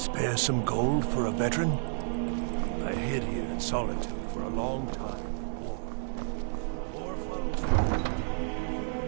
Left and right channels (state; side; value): silent; left; digital silence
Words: some gold for a veteran? I hid here in solitude for a long time. War follows.